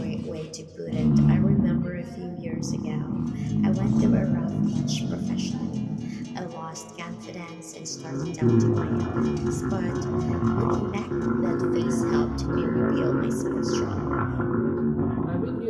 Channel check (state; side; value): identical; both; correlation 1.00